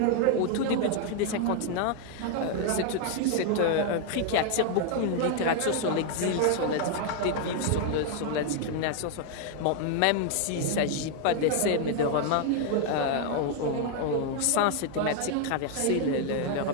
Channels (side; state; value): both; different; correlation 0.00